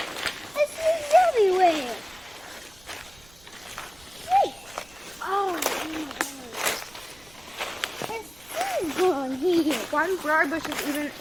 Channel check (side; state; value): right; noise; rumble, 26 dB below the sound